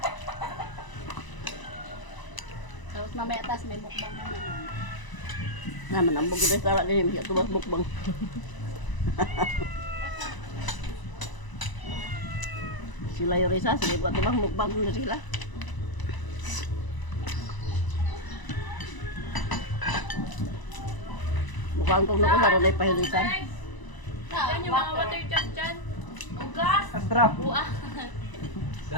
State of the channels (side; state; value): right; late; 1.0 ms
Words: Tapos mamaya tas may mukbang na naman. Naman, ang bugid na tala din. Siya tubas bukbang. Sila yung risa. Sige, buat tibang mukbang na sila. Mukhang kung nakusaro na ipahilisan. Yan yung mga water jug dyan. Ugas! Astra. Buah!